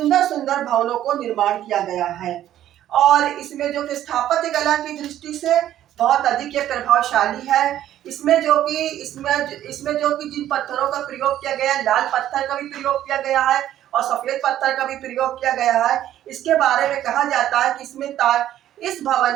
सुंदर भवनों को निर्माण किया गया है और इसमें जो कि स्थापत्य कला की दृष्टि से बहुत अधिक ये प्रभावशाली है। इसमें जो कि जिन पत्थरों का प्रयोग किया गया है, लाल पत्थर का भी प्रयोग किया गया है और सफेद पत्थर का भी प्रयोग किया गया है। इसके बारे में कहा जाता है कि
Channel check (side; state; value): left; quieter; 12.2 dB